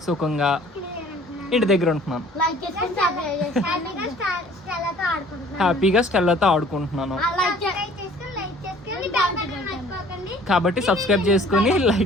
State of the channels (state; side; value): normal; both; correlation 0.53